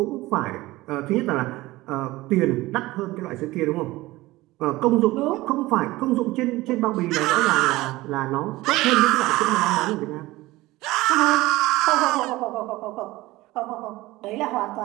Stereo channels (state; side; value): quieter; left; 18.9 dB